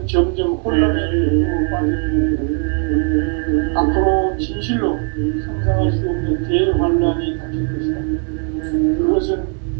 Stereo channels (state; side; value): quieter; left; 38.7 dB